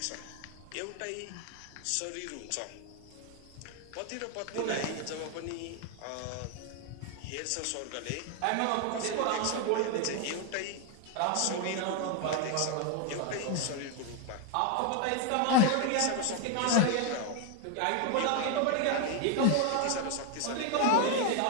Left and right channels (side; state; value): both; different; correlation 0.01